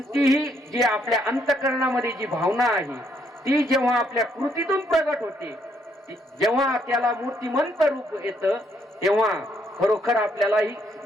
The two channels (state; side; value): normal; both; correlation 0.72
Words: जी आपल्या अंतःकरणामध्ये जी भावना आहे ती जेव्हा आपल्या कृतीतून प्रगट होते, जेव्हा त्याला मूर्तिमंत रूप येतं, तेव्हा खरोखर आपल्यालाही